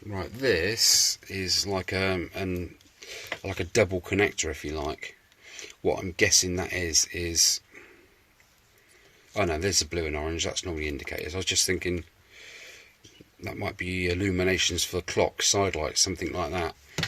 Right, this is like a double connector, if you like. What I'm guessing that is. Oh no, there's the blue and orange. That's normally indicators. I was just thinking that might be illuminations for the clock, side lights, something like that.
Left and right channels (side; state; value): both; identical; correlation 1.00